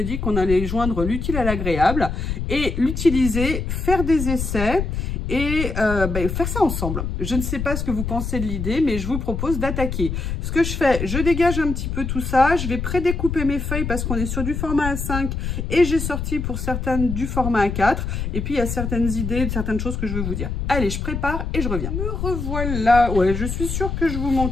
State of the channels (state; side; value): noise; left; rumble, 3 dB below the sound